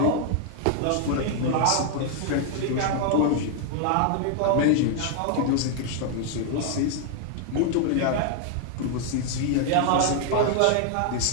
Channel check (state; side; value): different; both; correlation 0.00